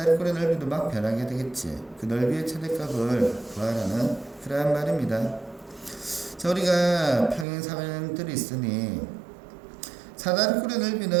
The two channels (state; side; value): drops out; left; at 7.5 s